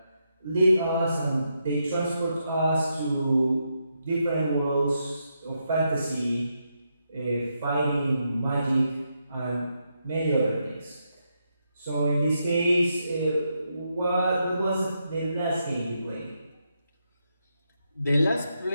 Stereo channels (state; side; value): inverted; both; correlation -0.82